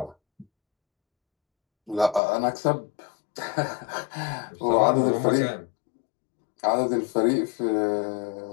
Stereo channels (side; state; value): right; drops out; at 2.2 s